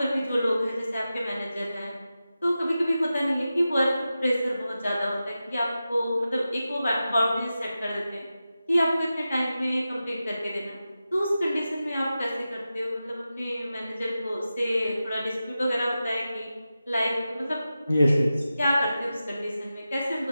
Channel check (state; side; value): inverted; both; correlation -0.93